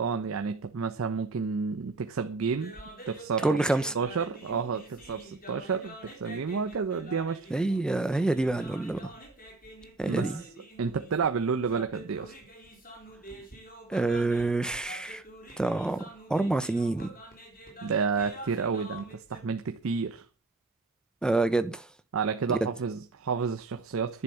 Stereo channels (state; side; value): quieter; left; 3.6 dB